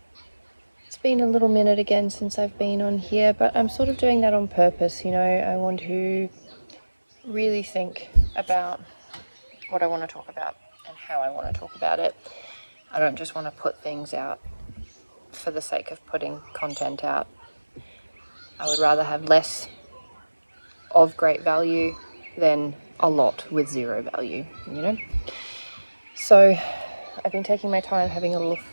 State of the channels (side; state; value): both; inverted; correlation -1.00